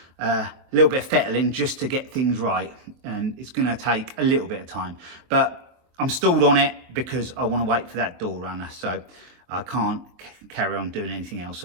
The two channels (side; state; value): left; late; 23 ms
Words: a little bit of fettling just to get things right, and it's going to take a little bit of time. But I'm stalled on it because I want to wait for that door runner, so I can't carry on doing anything else